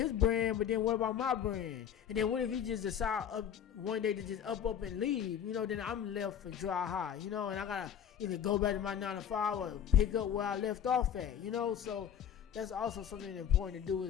brand. But then what about my brand? And then what if he just decide one day to just up and leave? Then I'm left for dry high, and I gotta either go back to my 9 to 5 or pick up where I left off at, so that's also something important to do,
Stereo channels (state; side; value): quieter; right; 9.0 dB